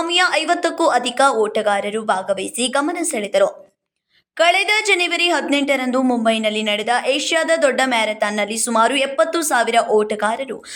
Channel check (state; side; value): identical; both; correlation 1.00